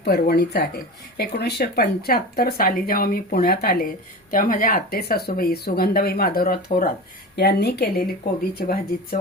पर्वणीच आहे. 1975 साली जेव्हा मी पुण्यात आले तेव्हा माझ्या आते सासूबाई सुगंधाबाई माधवराव थोरात यांनी केलेली कोबीची भाजी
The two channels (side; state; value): both; normal; correlation 0.29